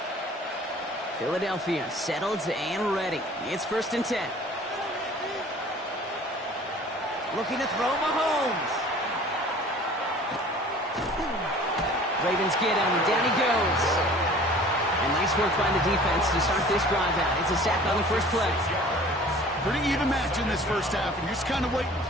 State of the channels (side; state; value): both; normal; correlation 0.47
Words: Philadelphia settled and ready. It's 1st and 10. Looking to throw Mahomes. Ravens get him. Down he goes. And nice work by the defense to start this drive out. It's a sack on the first play. Pretty even match in this first half, and you're just kind of waiting.